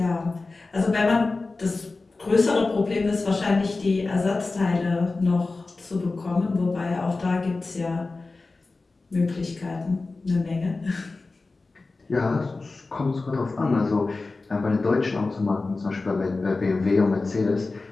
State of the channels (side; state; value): right; quieter; 3.6 dB